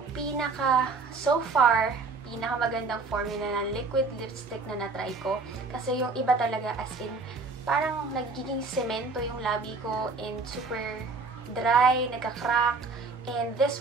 so far, pinakamagandang formula ng liquid lipstick na natry ko. Kasi yung iba talaga, as in parang nagiging semento yung labi ko and super dry, nagka-crack. And this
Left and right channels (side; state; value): left; quieter; 4.1 dB